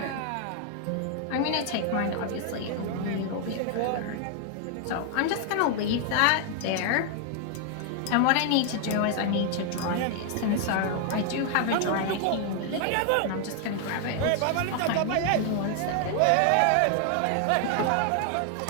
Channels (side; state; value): both; different; correlation 0.00